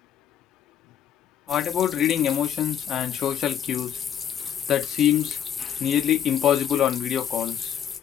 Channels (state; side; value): quieter; right; 9.5 dB